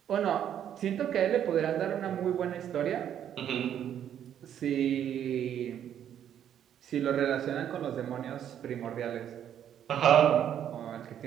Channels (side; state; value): left; quieter; 9.9 dB